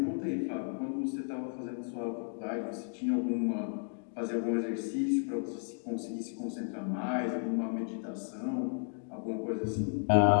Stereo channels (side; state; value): right; silent; 55 dB below the other